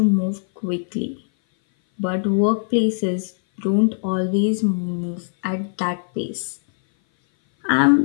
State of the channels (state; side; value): silent; right; 58 dB below the other